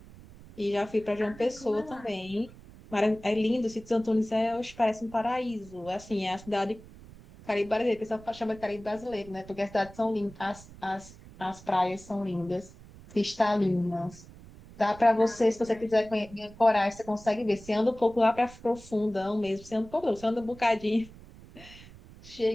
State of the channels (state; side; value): noise; right; rumble, 19 dB below the sound